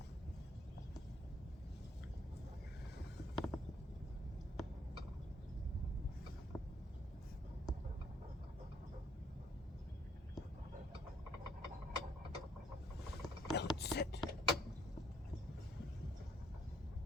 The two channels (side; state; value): both; normal; correlation 0.66